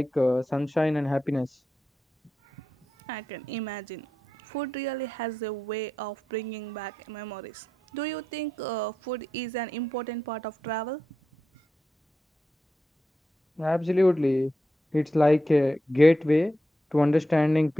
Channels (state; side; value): normal; both; correlation 0.87